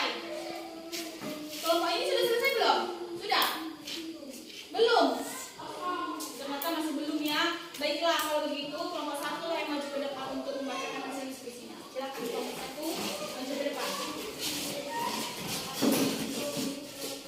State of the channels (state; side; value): identical; both; correlation 1.00